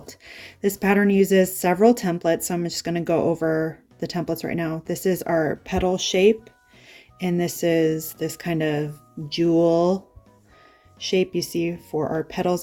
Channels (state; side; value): identical; both; correlation 1.00